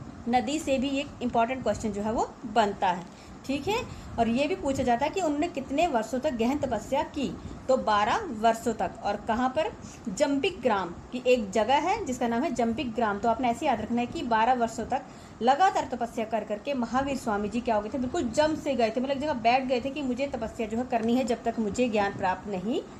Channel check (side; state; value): both; identical; correlation 1.00